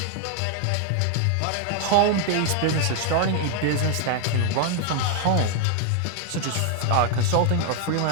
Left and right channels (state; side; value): different; both; correlation 0.00